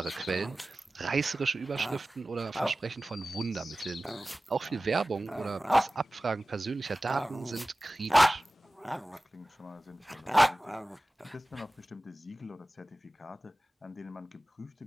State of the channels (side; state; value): both; normal; correlation 0.97